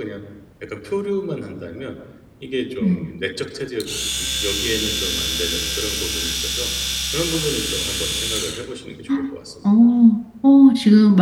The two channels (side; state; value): both; identical; correlation 1.00